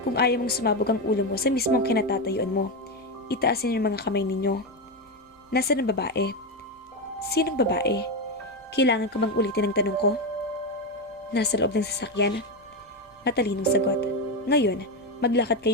kung ayaw mong sumabog ang ulo mo sa mismong kinatatayuan mo. Itaasin yung mga kamay ninyo. Nasaan ang babae? Sinong babae? Kailangan ko bang ulitin ang tanong ko? Nasa loob ng sasakyan. Matalinong sagot. Ngayon, maglakad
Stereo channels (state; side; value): normal; both; correlation 0.11